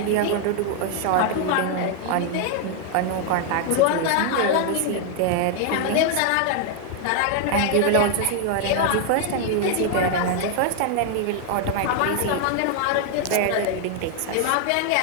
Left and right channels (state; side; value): different; both; correlation 0.00